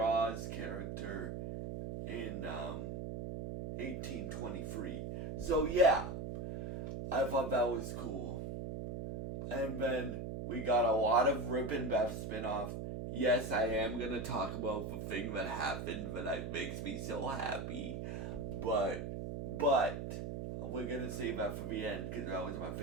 character in 1823. So yeah, I thought that was cool. And then we got a lot of RIP and Beth spinoff. Yes, I am gonna talk about the thing that happened that makes me so happy, but we're gonna save that for the end because that was my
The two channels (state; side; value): noise; right; hum, 5 dB below the sound